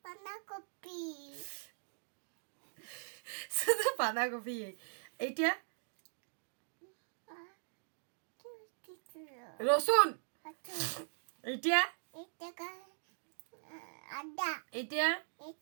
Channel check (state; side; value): silent; left; digital silence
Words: বাঁধাকপি শুধু বাঁধাকপি এটা কিছু রসুন এটা এটা আদা এটা